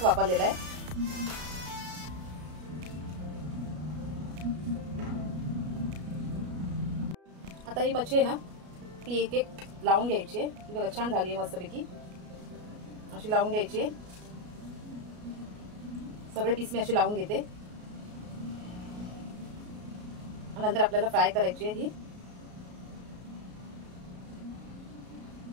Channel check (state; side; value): late; left; 33 ms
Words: वापरलेला आहे। आता ही मच्छी आहे ना ती एक एक लावून घ्यायची आहे। ती बघा छान झाली आहे मस्तपैकी, अशी लावून घ्यायची आहे। सगळे पीस मी अशी लावून घेते। नंतर आपल्याला फ्राय करायची आहे ही,